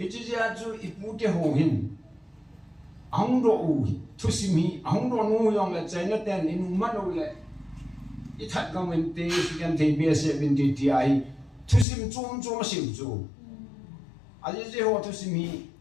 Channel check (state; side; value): drops out; right; at 11.9 s